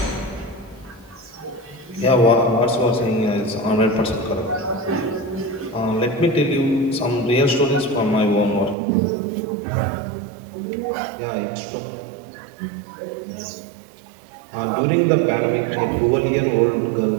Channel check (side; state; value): left; drops out; at 8.8 s